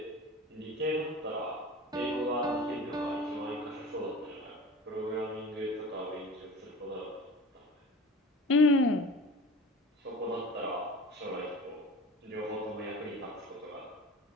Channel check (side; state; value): both; normal; correlation 0.38